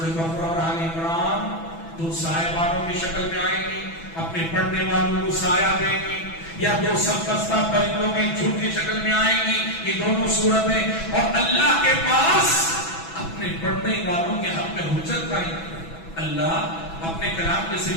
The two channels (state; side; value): late; right; 6.1 ms